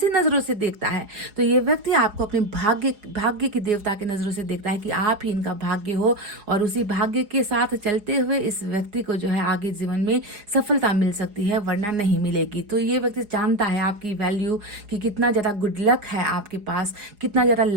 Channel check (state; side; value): late; left; 4.8 ms